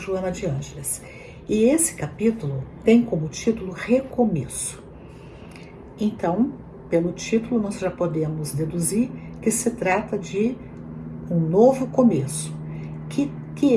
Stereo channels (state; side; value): identical; both; correlation 1.00